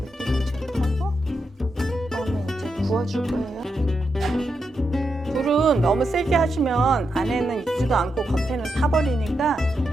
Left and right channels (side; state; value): both; normal; correlation 0.85